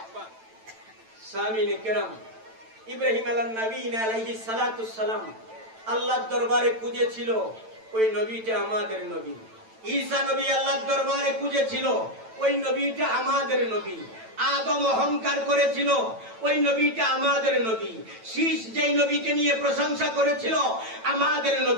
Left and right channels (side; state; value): left; late; 9.0 ms